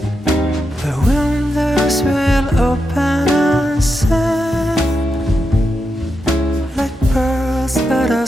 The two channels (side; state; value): both; normal; correlation 0.86